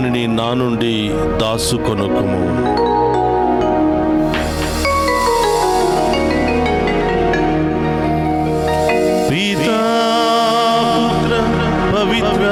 నా నుండి దాసుకొనుకుము. పితా పుత్ర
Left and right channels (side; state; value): both; identical; correlation 1.00